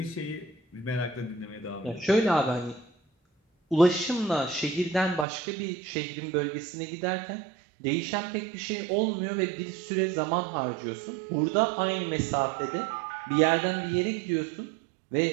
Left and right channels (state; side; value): drops out; left; at 5.2 s